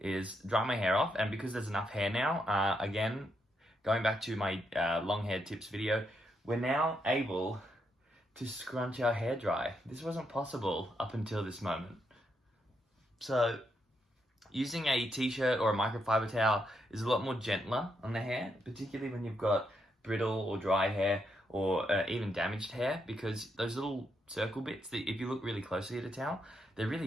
dry my hair off. And because there's enough hair now, again, going back to my long hair tips video, we're now able to scrunch our hair dry. This wasn't possible up until this moment. So using a t-shirt or a microfiber towel is a lot more gentler on the hair, particularly when you've got brittle or dry hair or even damaged hair, because those little circle bits, that if you look really closely at a towel, they're really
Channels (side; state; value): both; normal; correlation 0.79